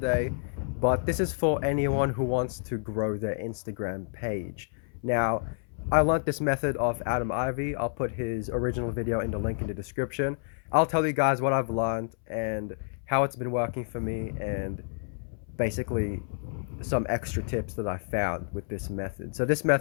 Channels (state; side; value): silent; right; 58 dB below the other